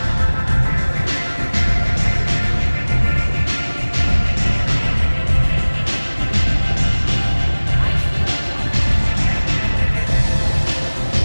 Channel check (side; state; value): both; inverted; correlation -1.00